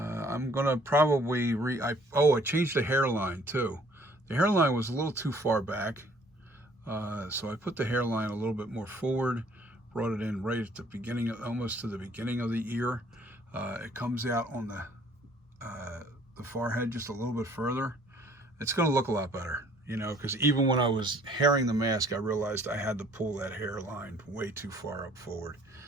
I'm gonna probably I changed the hairline too. The hairline was a little too far back, so I put the hairline a little bit more forward, brought it in right at the beginning, almost to the beginning of the ear. It comes out on the forehead just a little bit further. It's gonna look a lot better, you know, because even when I was hairing the mask, I realized I had to pull that hairline way too far up forward.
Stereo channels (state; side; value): normal; both; correlation 0.58